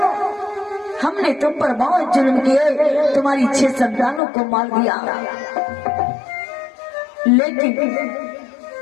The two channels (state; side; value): drops out; right; at 4.2 s